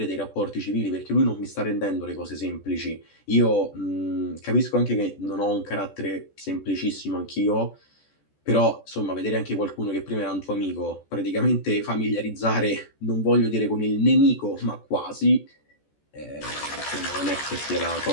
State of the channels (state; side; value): late; right; 14 ms